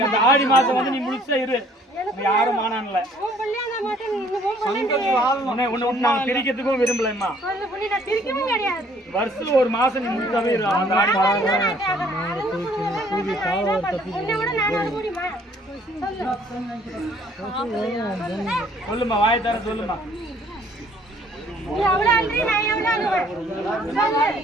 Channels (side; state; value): both; normal; correlation 0.60